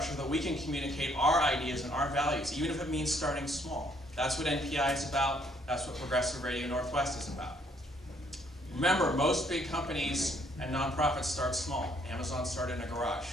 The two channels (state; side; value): normal; both; correlation 0.66